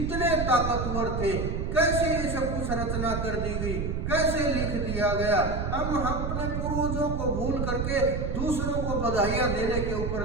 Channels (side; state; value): right; noise; rumble, 2 dB below the sound